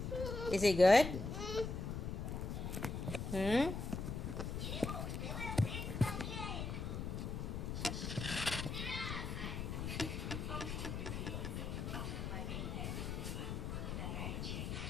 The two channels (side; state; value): left; noise; rumble, 3 dB below the sound